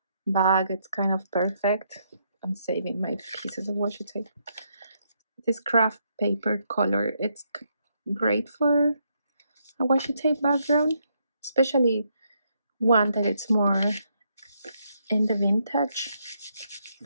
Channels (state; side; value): inverted; both; correlation -0.76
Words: bag, it's kind of perfect. I'm saving my pieces of washi tape. This craft paper color, it's great for a washi tape background. Especially one that it's more in the vintage